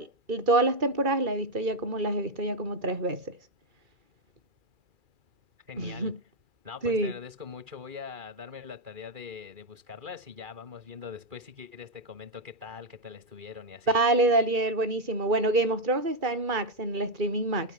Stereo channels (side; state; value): left; late; 2.4 ms